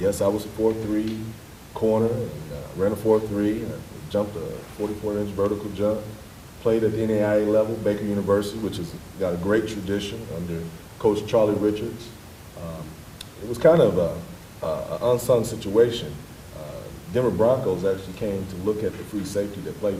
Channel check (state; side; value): identical; both; correlation 1.00